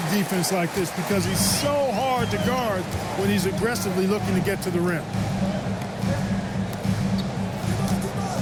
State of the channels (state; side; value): identical; both; correlation 1.00